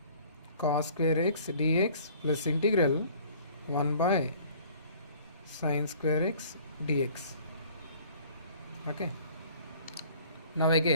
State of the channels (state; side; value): inverted; both; correlation -0.52